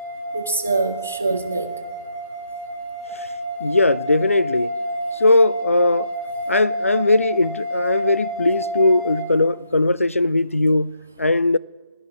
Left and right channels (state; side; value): inverted; both; correlation -0.78